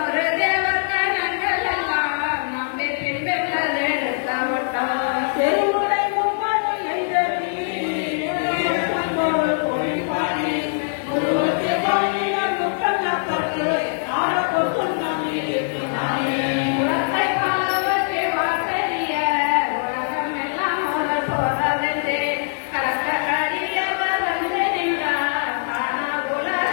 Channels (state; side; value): silent; right; 55 dB below the other